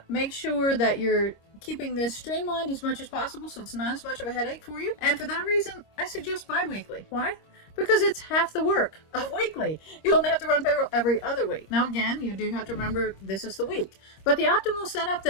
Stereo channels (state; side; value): late; right; 26 ms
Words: Make sure that you're keeping this streamlined as much as possible so it's not as much of a headache for you. And for that reason, I suggest bi-weekly. Why? Because it's half the work of weekly. You only have to run payroll every other week. Now again, you do have to remember this is the week. But the optimal setup